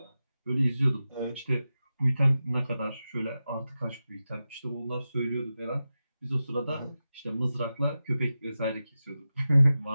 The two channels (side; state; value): both; inverted; correlation -0.93